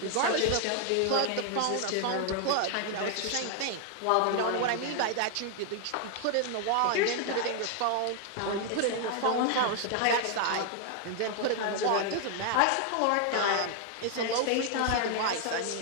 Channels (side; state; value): both; different; correlation 0.00